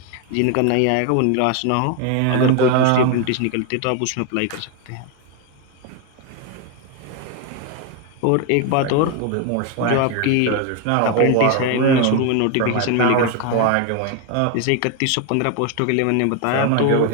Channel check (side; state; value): both; different; correlation 0.01